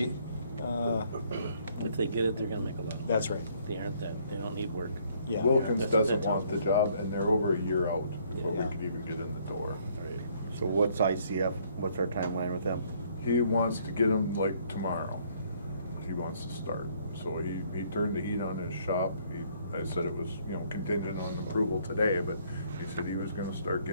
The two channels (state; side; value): inverted; both; correlation -0.64